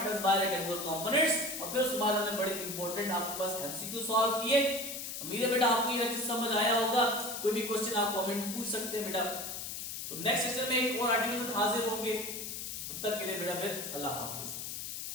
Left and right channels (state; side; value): noise; left; hiss, 6 dB below the sound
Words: by rectangular components और फिर उसके बाद हमने बड़े इंपॉर्टेंट आपके पास एमसीक्यू सॉल्व किए। उम्मीद है बेटा आपको ये चीज समझ आया होगा। कोई भी क्वेश्चन आप कमेंट में पूछ सकते हैं बेटा। तो नेक्स्ट सेशन में एक और आर्टिकल से हाजिर होंगे, तब तक के लिए बेटा फिर अल्लाह हाफिज।